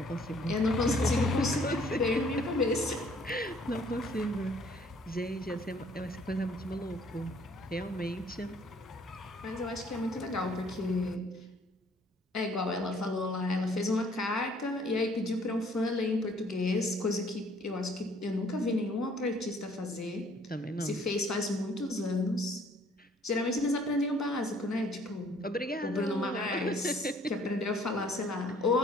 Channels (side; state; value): both; normal; correlation 0.59